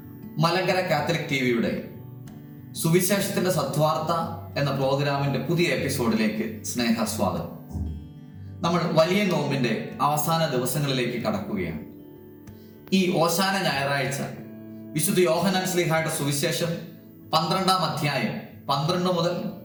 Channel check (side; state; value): both; identical; correlation 1.00